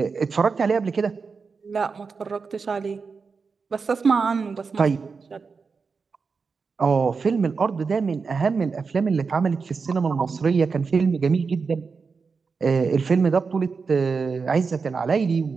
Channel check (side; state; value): left; quieter; 5.0 dB